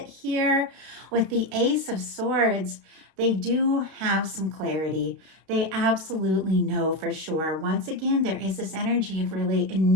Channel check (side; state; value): left; late; 31 ms